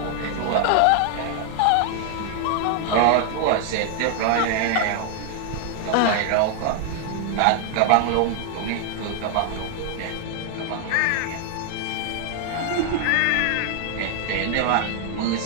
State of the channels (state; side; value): different; both; correlation 0.00